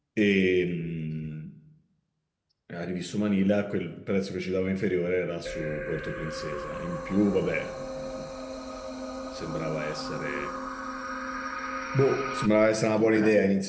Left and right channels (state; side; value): identical; both; correlation 1.00